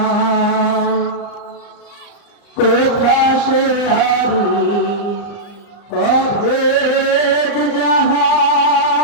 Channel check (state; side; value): late; right; 35 ms